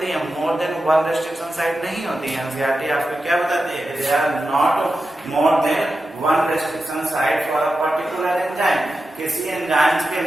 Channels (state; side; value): normal; both; correlation 0.91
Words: है, more than one restriction site नहीं होती है। एनसीईआरटी आपको क्या बताती है? They are not more than one restriction site for a particular enzyme. किसी एंजाइम्स के